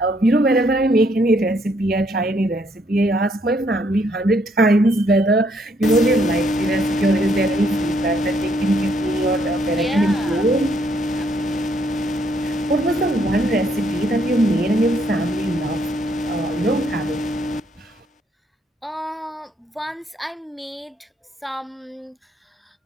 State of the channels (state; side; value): normal; both; correlation 0.70